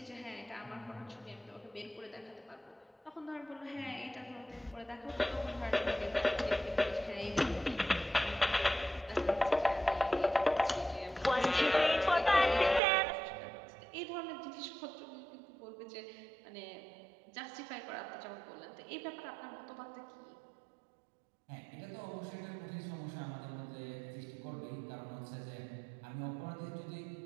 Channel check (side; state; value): left; drops out; at 12.8 s